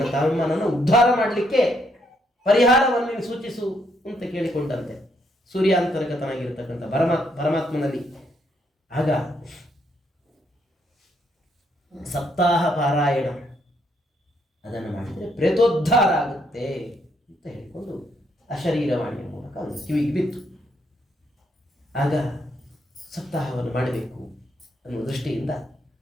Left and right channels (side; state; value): both; normal; correlation 0.73